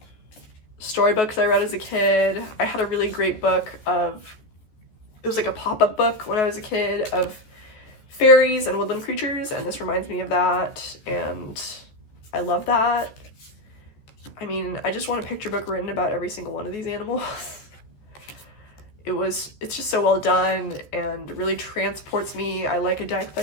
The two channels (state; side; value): late; right; 14 ms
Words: storybooks I read as a kid. I had a really great book it was like a pop-up book when I was a kid, of fairies and woodland creatures, and this reminds me of that, and I love that. I mean, I just want a picture book written about every single one of these animals. It's just so well done and really transports me. I like a deck